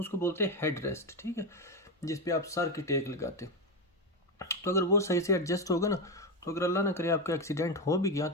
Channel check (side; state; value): both; normal; correlation 0.11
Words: बोलते हैं हेड रेस्ट। ठीक है, जिस पे आप सर की टेक लगाते, तो अगर वो सही से एडजस्ट होगा ना, तो अगर अल्लाह ना करे आपका एक्सीडेंट हो भी गया